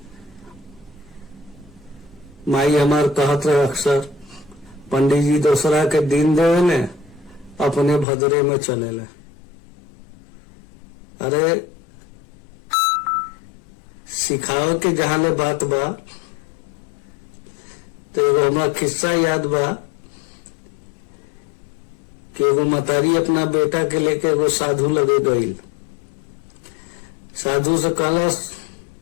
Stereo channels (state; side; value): drops out; right; at 8.1 s